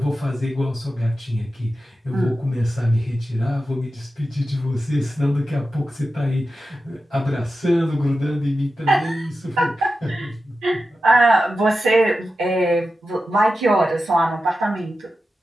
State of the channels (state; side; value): normal; both; correlation 0.92